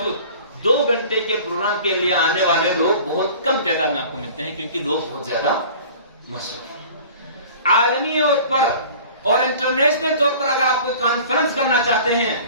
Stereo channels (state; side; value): inverted; both; correlation -0.44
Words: 2 گھنٹے کے پروگرام کے لیے آنے والے لوگ بہت کم تعداد میں آپ کو ملتے ہیں، کیونکہ لوگ بہت زیادہ مصروف ہیں۔ عالمی طور پر اور انٹرنیشنل طور پر اگر آپ کوئی کانفرنس کرنا چاہتے ہیں